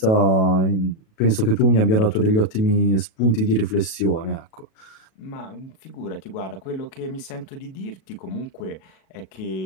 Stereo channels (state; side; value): late; right; 37 ms